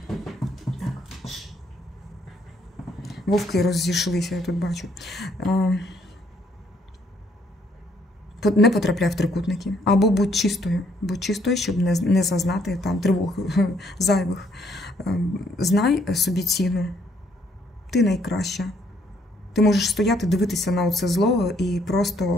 Вовки розійшлися, я тут бачу. Не потрапляй в трикутники. Або будь чистою, щоб не зазнати там тривог зайвих. Знай собі ціну. Ти найкраща. Ти можеш стояти, дивитися на оце зло і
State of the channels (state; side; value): normal; both; correlation 0.68